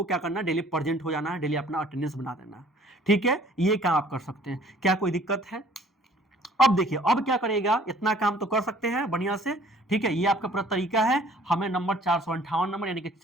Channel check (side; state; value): both; normal; correlation 0.55